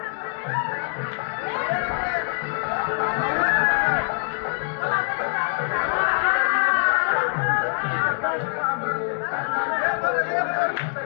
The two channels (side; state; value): right; silent; digital silence